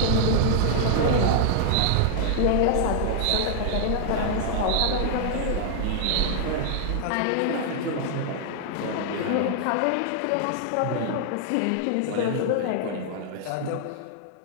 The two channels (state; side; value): different; both; correlation -0.01